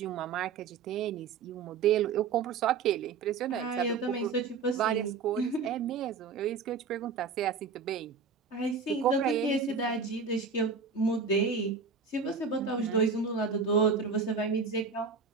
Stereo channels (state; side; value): quieter; left; 5.2 dB